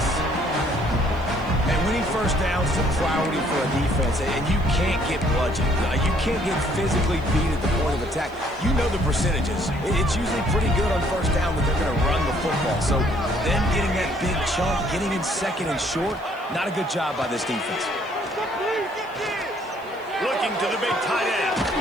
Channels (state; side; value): noise; right; hiss, 29 dB below the sound